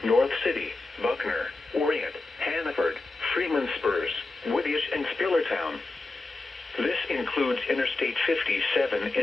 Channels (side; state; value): right; quieter; 3.3 dB